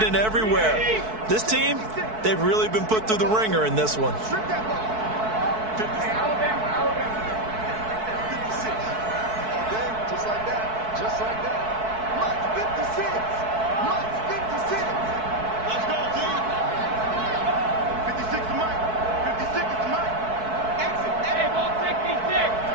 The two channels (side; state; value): left; late; 4.6 ms